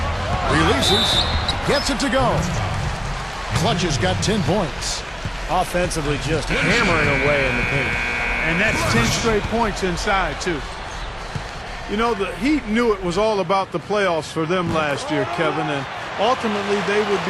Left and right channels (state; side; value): identical; both; correlation 1.00